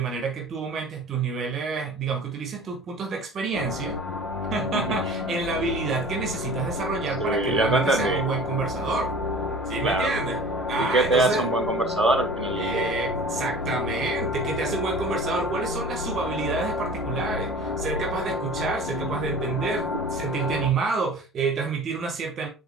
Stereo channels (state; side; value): normal; both; correlation 0.41